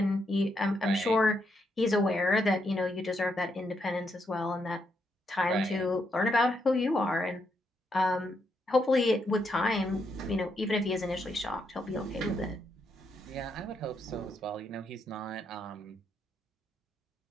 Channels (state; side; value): normal; both; correlation 0.79